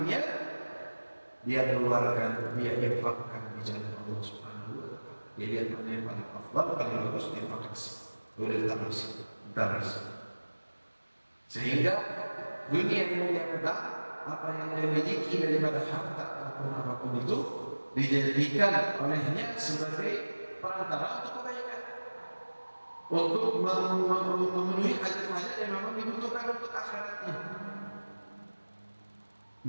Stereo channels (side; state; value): both; inverted; correlation -1.00